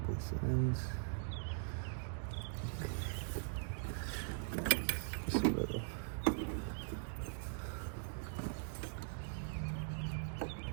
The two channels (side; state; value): left; silent; digital silence